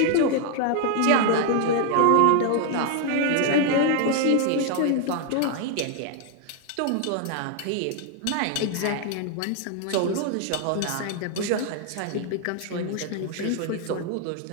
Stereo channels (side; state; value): both; different; correlation 0.00